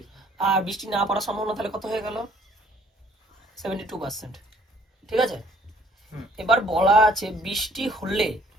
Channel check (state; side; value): normal; both; correlation 0.60